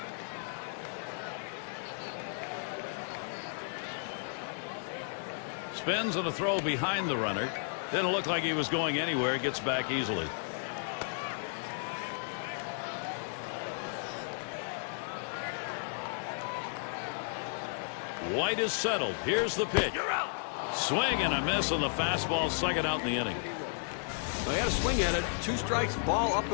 Spins and a throw behind the runner. Didn't look like he was going anywhere. Gets back easily. White is settled. Here's the pitch. You're out. Swing and a miss on the fastball. Second out in the inning. They had a swing at it. 2 strikes, ball up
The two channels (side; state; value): right; silent; digital silence